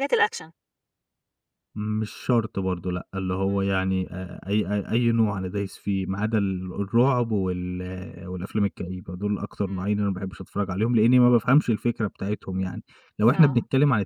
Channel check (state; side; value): identical; both; correlation 1.00